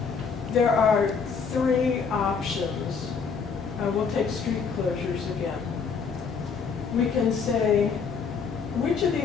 there are 3 options. We'll take street closures again. We can say, which of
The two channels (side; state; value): right; quieter; 5.7 dB